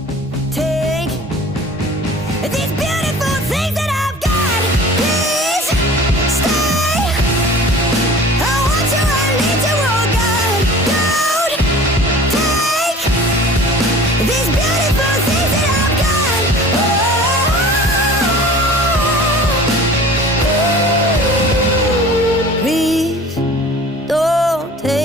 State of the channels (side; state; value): both; normal; correlation 0.43